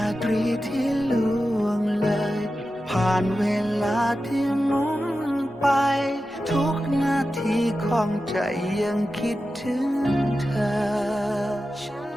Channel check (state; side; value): normal; both; correlation 0.92